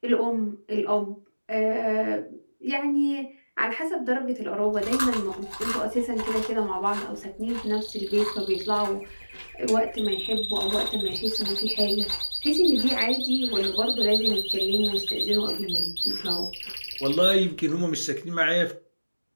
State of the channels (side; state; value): both; inverted; correlation -1.00